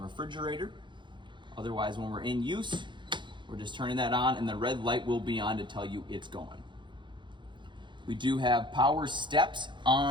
refrigerator. Otherwise, when we're in use, we're just turning that on, and the red light will be on to tell you it's going. We do have power steps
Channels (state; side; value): late; left; 0.23 ms